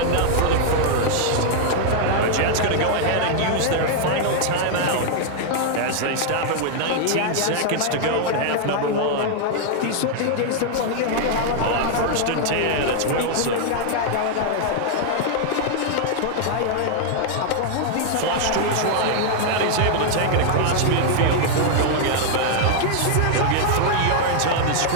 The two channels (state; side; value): different; both; correlation -0.01